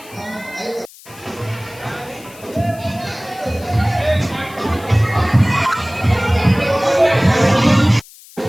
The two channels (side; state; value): left; noise; hiss, 21 dB below the sound